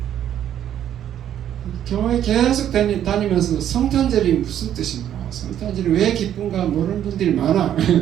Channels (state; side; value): quieter; left; 10.5 dB